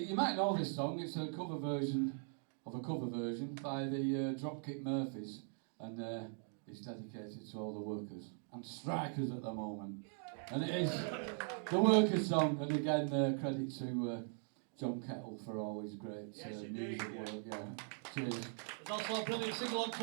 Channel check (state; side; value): silent; left; 51 dB below the other